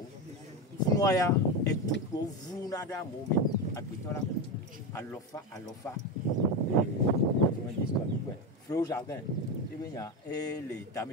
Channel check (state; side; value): normal; both; correlation 0.15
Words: noya et tout pour vous nada mon mais à pitola à l'ofa Frau Jardin et les